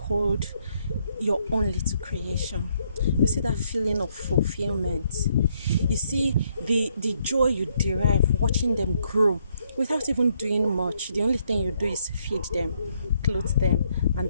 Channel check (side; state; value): both; inverted; correlation -0.73